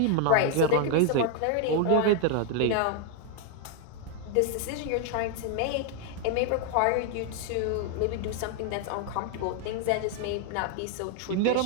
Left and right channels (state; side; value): different; both; correlation 0.00